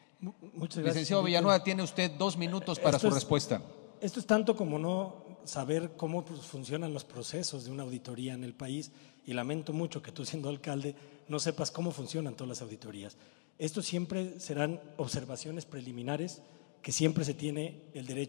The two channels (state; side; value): silent; right; digital silence